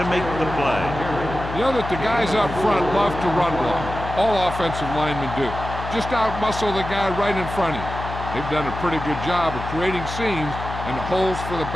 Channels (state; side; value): noise; left; hum, 8 dB below the sound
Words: make the play. You know that the guys up front love to run block. All offensive linemen do. Just out-muscle the guy right in front of you. They've done a pretty good job of creating seams and holes for the